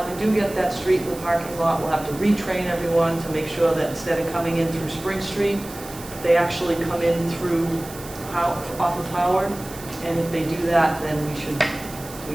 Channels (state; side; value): noise; right; hiss, 16 dB below the sound